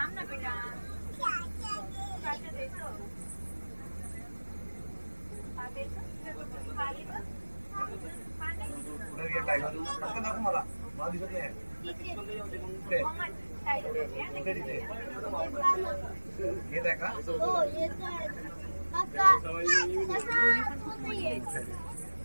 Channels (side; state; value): both; inverted; correlation -1.00